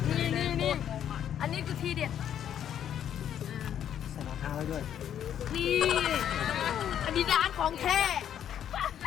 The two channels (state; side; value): quieter; right; 9.8 dB